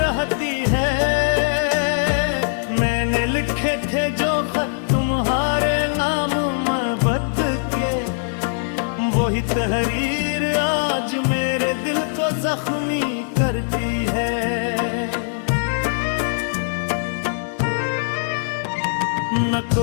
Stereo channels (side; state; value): right; silent; 64 dB below the other